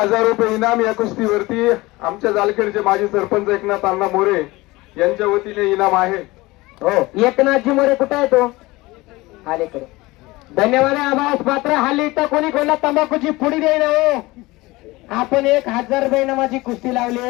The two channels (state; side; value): quieter; right; 21.0 dB